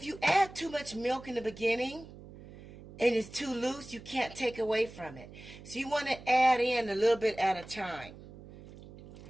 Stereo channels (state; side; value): noise; right; hum, 17 dB below the sound